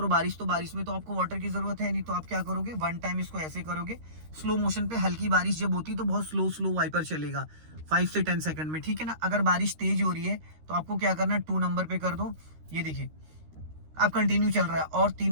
बारिश, तो बारिश में तो आपको वाटर की जरूरत है नहीं, तो आप क्या करोगे, वन टाइम इसको ऐसे करोगे। स्लो मोशन पे, हल्की बारिश जब होती है तो बहुत स्लो वाइपर चलेगा 5 से 10 सेकंड में। ठीक है ना। अगर बारिश तेज हो रही है तो आपको क्या करना है, 2 नंबर पे कर दो। ये देखिए अब कंटिन्यू चल रहा है, और 3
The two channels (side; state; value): left; late; 13 ms